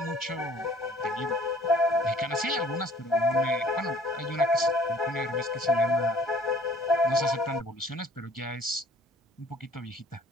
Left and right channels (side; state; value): both; normal; correlation 0.54